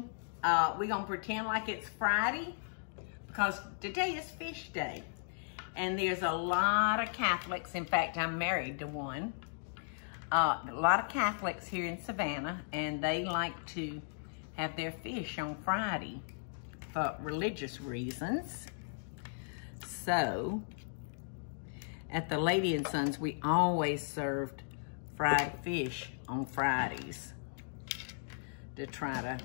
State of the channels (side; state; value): right; silent; digital silence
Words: We're gonna pretend like it's Friday because today is fish day. And there's a lot of Catholics, in fact I'm married to one. A lot of Catholics here in Savannah, and they like to have their fish on Friday for religious reasons. So, at the Lady and Sons, we always served fried fish on Fridays to try to